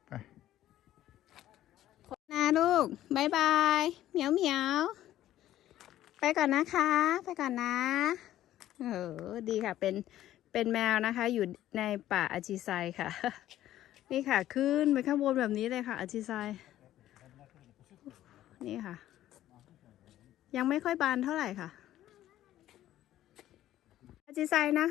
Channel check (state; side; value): quieter; right; 13.2 dB